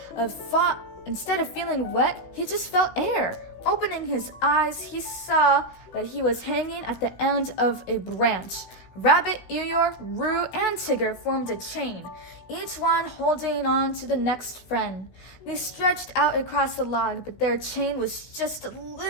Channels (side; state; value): right; late; 17 ms